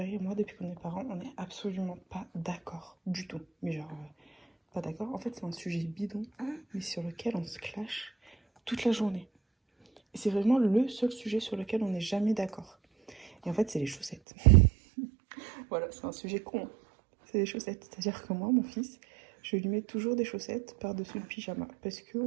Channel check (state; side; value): drops out; left; at 14.2 s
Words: et moi, depuis qu'on est parents, on n'est absolument pas d'accord du tout. Mais genre, pas d'accord. En fait, c'est un sujet bidon, mais sur lequel on se clash toute la journée. Et c'est vraiment le seul sujet sur lequel on n'est jamais d'accord. Et en fait, c'est les chaussettes. Voilà, c'est un sujet con. C'est les chaussettes. C'est-à-dire que moi, mon fils, je lui mets toujours des chaussettes par-dessus le pyjama. Parce